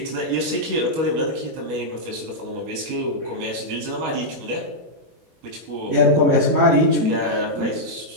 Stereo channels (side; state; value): left; late; 25 ms